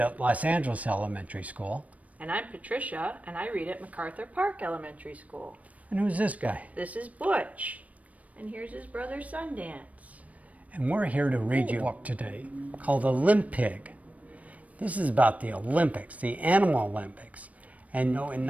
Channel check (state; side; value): late; left; 0.069 ms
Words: Los Angeles Elementary School. And I'm Patricia, and I read at MacArthur Park Elementary School. And who's this guy? This is Butch, and here's his brother Sundance. And we're here to read you a book today called Olympig. This is about the Olympics, the Animal Olympics. And in